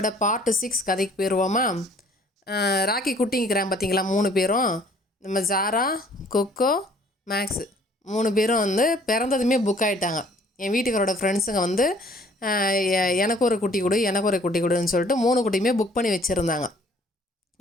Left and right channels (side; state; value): both; normal; correlation 0.56